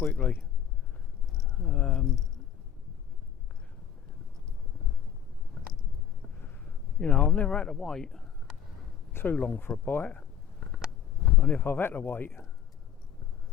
You know, I've never had to wait too long for a bite, and if I've had to wait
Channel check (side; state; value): right; quieter; 9.1 dB